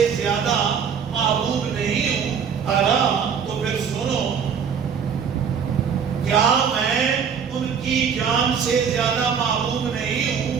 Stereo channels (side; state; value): left; quieter; 7.0 dB